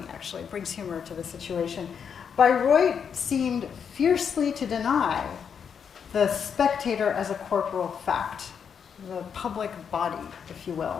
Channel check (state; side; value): quieter; right; 7.1 dB